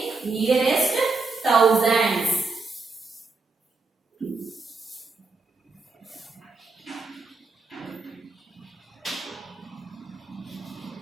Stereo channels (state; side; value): quieter; left; 3.9 dB